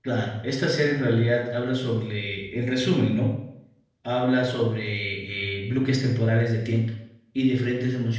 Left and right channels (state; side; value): identical; both; correlation 1.00